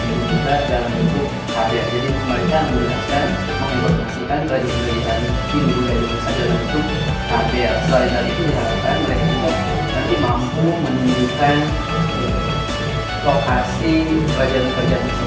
Hindu Buddha dalam bentuk karya. Jadi mereka menjelaskan, menginformasikan kerajaan-kerajaan Hindu Buddha di Indonesia dalam bentuk karya. Selain dari itu diharapkan mereka juga nanti mampu menunjukkan lokasi kerajaan-kerajaan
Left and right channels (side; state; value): both; identical; correlation 1.00